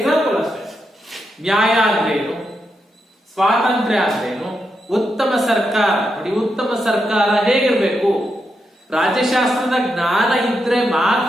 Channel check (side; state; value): both; normal; correlation 0.84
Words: ಅಷ್ಟೇ. ನ್ಯಾಯ ಅಂದ್ರೇನು, ಸ್ವಾತಂತ್ರ್ಯ ಅಂದ್ರೇನು, ಉತ್ತಮ ಸರ್ಕಾರ. ನೋಡಿ, ಉತ್ತಮ ಸರ್ಕಾರ ಹೇಗಿರ್ಬೇಕು? ರಾಜ್ಯಶಾಸ್ತ್ರದ ಜ್ಞಾನ ಇದ್ರೆ